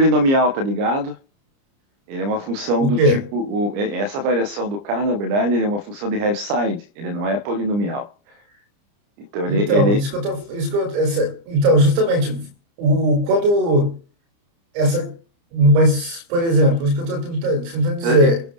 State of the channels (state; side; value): late; left; 30 ms